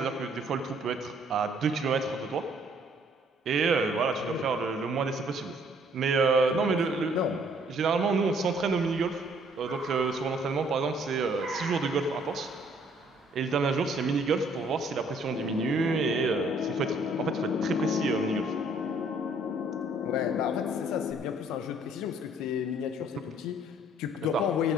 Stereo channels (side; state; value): both; normal; correlation 0.62